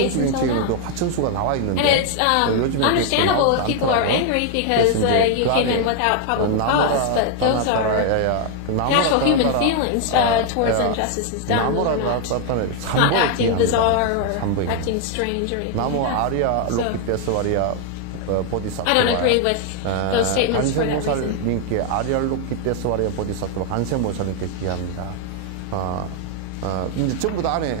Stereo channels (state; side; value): different; both; correlation 0.00